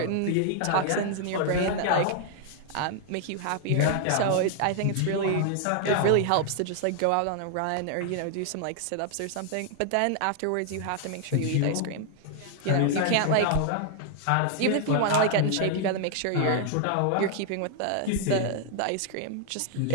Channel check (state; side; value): different; both; correlation 0.00